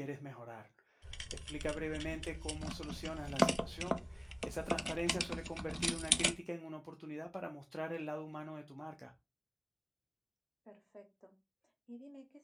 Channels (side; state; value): both; identical; correlation 1.00